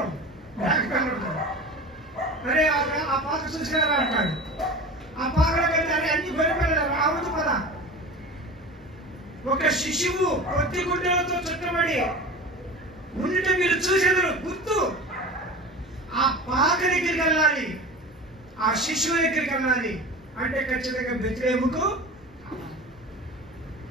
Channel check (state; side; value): normal; both; correlation 0.34